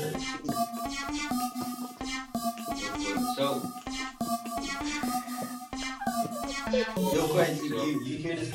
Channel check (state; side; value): identical; both; correlation 1.00